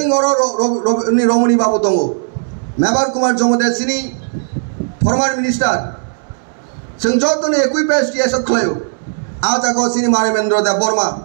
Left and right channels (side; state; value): left; silent; digital silence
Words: অর রমণী বাবু দङ মেবার কুমার জমদেব সিনি ফর্মার মিনিস্টার সিং যতনে একই পেস টিএসএফ খলাयो আজ আগো সিনি মানবেন্দ্র দেব বর্মা